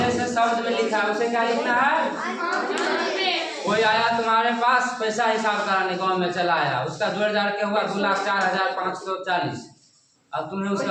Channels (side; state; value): both; identical; correlation 1.00